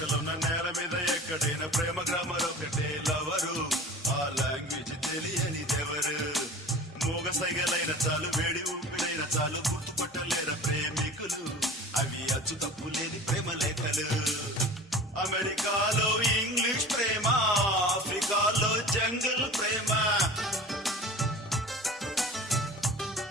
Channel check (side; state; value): both; normal; correlation 0.39